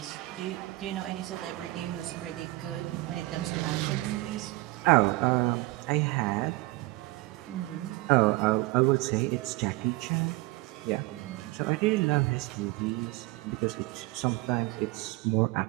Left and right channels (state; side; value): quieter; left; 20.5 dB